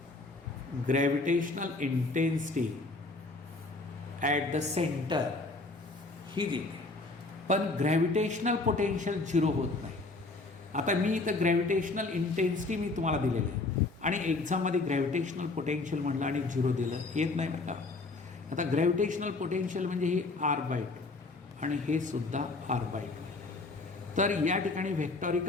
Gravitational intensity at the centre ही देते, पण ग्रॅव्हिटेशनल पोटेन्शियल 0 होत नाही. आता मी इथं ग्रॅव्हिटेशनल इंटेन्सिटी मी तुम्हाला दिलेलं आहे आणि एक्झाममध्ये ग्रॅव्हिटेशनल पोटेन्शियल म्हटलं आणि 0 दिलं, येत नाही बरं का. आता ग्रॅव्हिटेशनल पोटेन्शियल म्हणजे ही R/2 आणि हे सुद्धा R/2. तर या ठिकाणी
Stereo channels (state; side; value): quieter; right; 3.3 dB